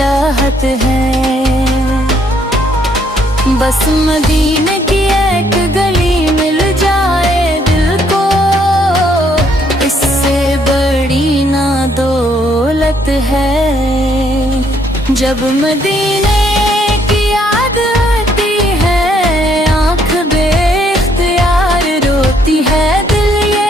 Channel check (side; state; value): both; normal; correlation 0.69